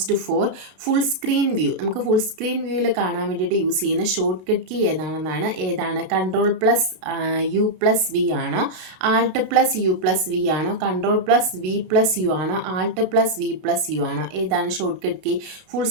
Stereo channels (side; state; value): left; late; 32 ms